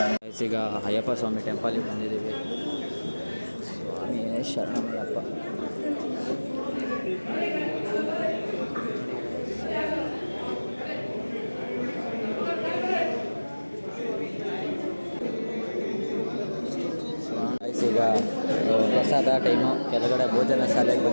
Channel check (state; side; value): inverted; both; correlation -1.00